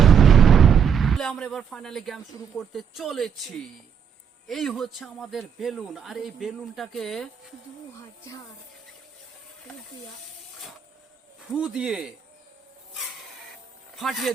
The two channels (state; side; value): quieter; left; 7.4 dB